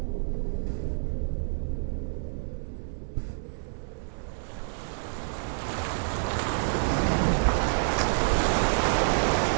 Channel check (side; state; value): left; silent; 59 dB below the other